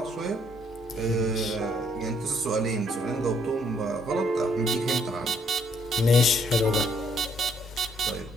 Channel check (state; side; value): normal; both; correlation 0.69